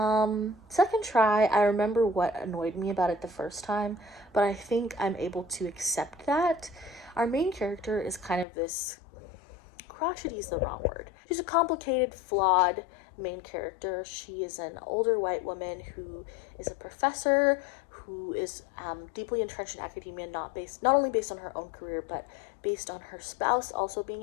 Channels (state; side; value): drops out; right; at 8.5 s